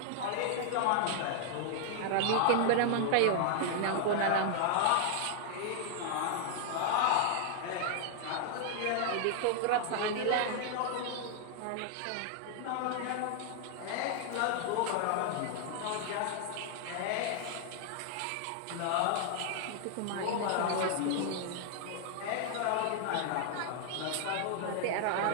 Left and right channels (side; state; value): both; different; correlation 0.00